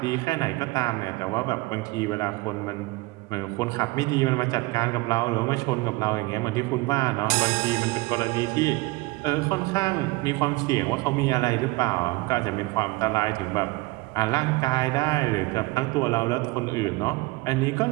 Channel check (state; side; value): quieter; left; 22.7 dB